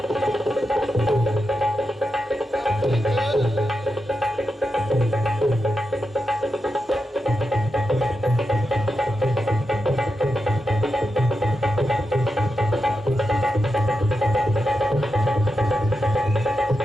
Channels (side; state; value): both; normal; correlation 0.88